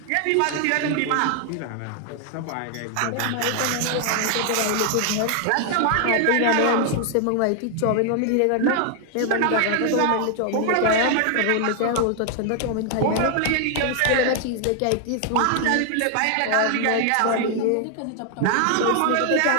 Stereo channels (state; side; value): different; both; correlation 0.00